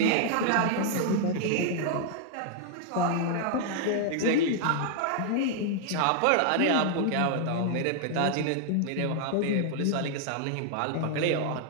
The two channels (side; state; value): both; different; correlation 0.00